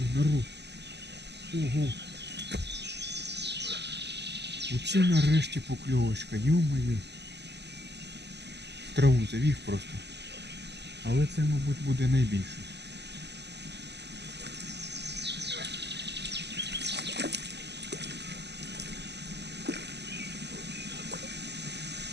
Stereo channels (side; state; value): left; late; 0.50 ms